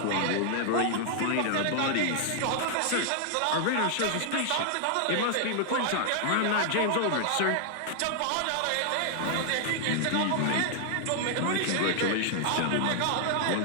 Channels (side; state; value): both; different; correlation -0.01